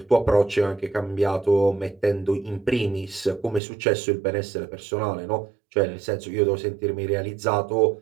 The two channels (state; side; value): drops out; left; at 3.6 s